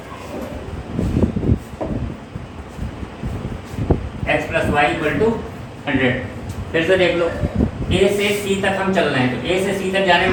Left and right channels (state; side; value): identical; both; correlation 1.00